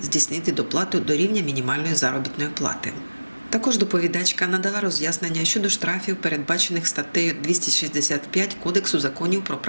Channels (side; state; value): both; inverted; correlation -1.00